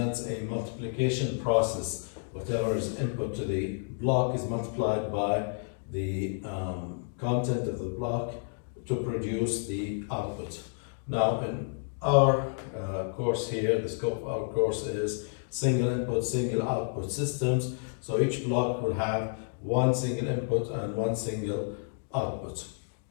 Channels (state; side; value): silent; right; digital silence